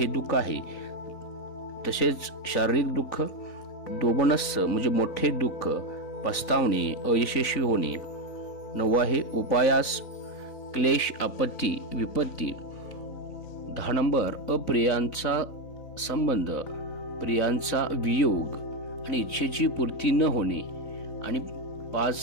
दुःख आहे. तसेच शारीरिक दुःख. दोबनस्स म्हणजे मोठे दुःख, पस्तावणे, अयशस्वी होणे. 9 आहे उपायास, क्लेश, आपत्ती, विपत्ती. 10 नंबर अप्रियांचा संबंध, प्रियांचा वियोग आणि इच्छेची पूर्ती न होणे. आणि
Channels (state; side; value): late; right; 3.9 ms